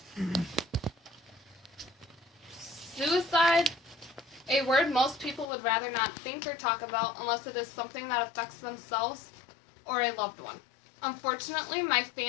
Suicide, a word most people would rather not think or talk about unless it is something that affects themselves or a loved one. Unfortunately, my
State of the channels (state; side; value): drops out; right; at 5.5 s